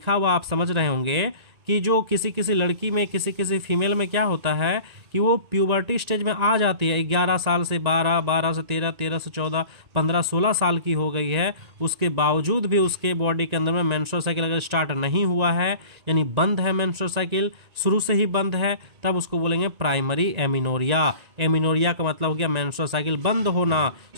हुआ आप समझ रहे होंगे कि जो किसी लड़की में, किसी फीमेल में क्या होता है कि वो प्यूबर्टी स्टेज में आ जाती है, 11 साल से 12, 12 से 13, 13 से 14, 15, 16 साल की हो गई है, उसके बावजूद भी उसके बॉडी के अंदर में मेंस्ट्रुअल साइकिल अगर स्टार्ट नहीं हुआ है, यानी बंद है, मेंस्ट्रुअल साइकिल शुरू से ही बंद है, तब उसको बोलेंगे प्राइमरी एमिनोरिया। एमिनोरिया का मतलब हो गया मेंस्ट्रुअल साइकिल बंद होना,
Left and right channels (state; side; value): late; left; 1.9 ms